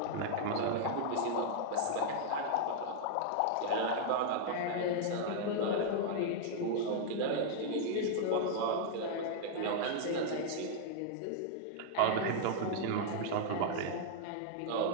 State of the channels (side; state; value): both; different; correlation -0.01